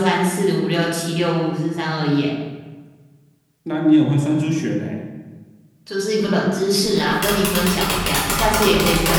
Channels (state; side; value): identical; both; correlation 1.00